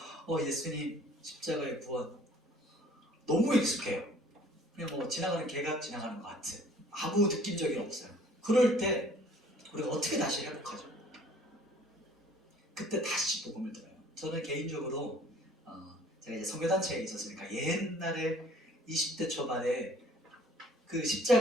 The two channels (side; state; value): both; normal; correlation 0.54